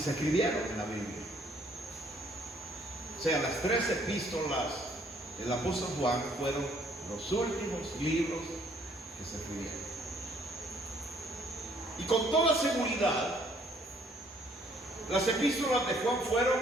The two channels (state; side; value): normal; both; correlation 0.63